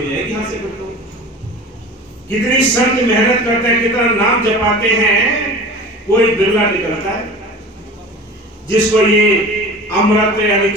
जाएगी। यहाँ से बताओ कितनी संत मेहनत करते हैं, कितना नाम जपाते हैं, कोई बिरला निकलता है जिसको ये अमृत यानी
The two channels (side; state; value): both; normal; correlation 0.37